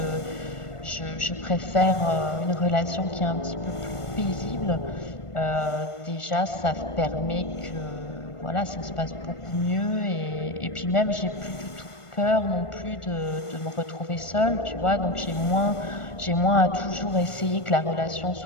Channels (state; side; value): late; right; 1.4 ms